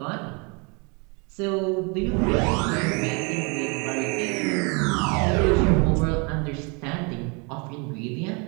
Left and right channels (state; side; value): quieter; left; 32.3 dB